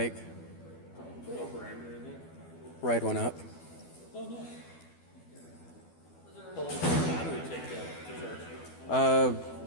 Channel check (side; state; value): right; late; 12 ms